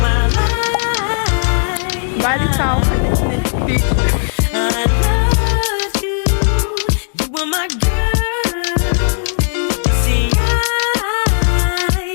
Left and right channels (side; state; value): right; silent; 67 dB below the other